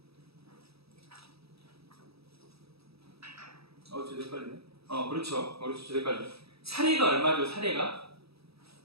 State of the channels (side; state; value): left; late; 0.77 ms